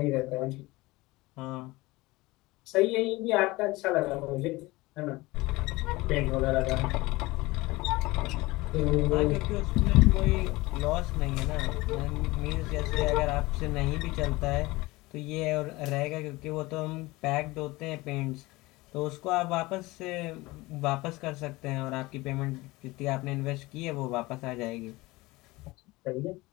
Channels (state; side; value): quieter; right; 21.1 dB